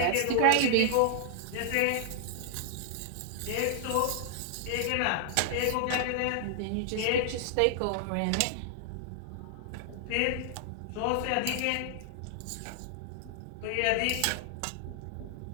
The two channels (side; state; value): both; different; correlation -0.01